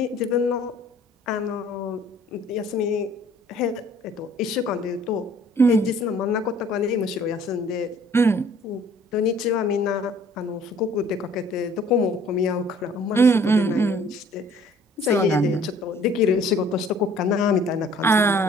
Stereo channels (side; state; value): both; normal; correlation 0.56